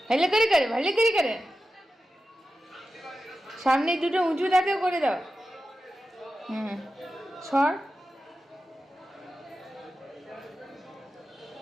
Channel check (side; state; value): both; normal; correlation 0.92